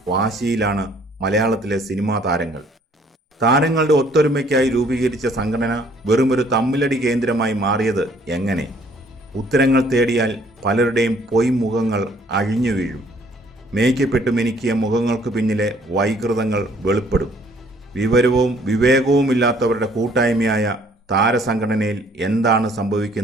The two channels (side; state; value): both; normal; correlation 0.61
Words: വാശിയിലാണ് മലയാളത്തിലെ സിനിമാ താരങ്ങൾ. താരങ്ങളുടെ ഒത്തൊരുമയ്ക്കായി രൂപീകരിച്ച സംഘടന വെറുമൊരു തമ്മിലടി കേന്ദ്രമായി മാറിയത് എങ്ങനെ? ഉത്തരങ്ങൾ തേടിയാൽ പലരുടെയും പൊയ്മുഖങ്ങൾ അഴിഞ്ഞു വീഴും. മേയ്ക്കപ്പെട്ടു മിനുക്കിയ മുഖങ്ങൾക്ക് പിന്നിലെ വൈകൃതങ്ങൾ വെളിപ്പെടും. വിവരവും വിവേകവുമില്ലാത്തവരുടെ കൂട്ടായ്മയായ താരസംഘടനയിൽ എന്താണ്